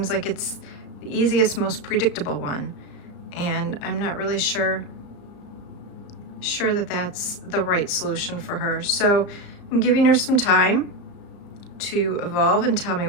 like it's the easiest, most predictable one, and I'm not really sure that that's the right solution for her. So I'm giving her some time to evolve and tell me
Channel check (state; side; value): late; right; 34 ms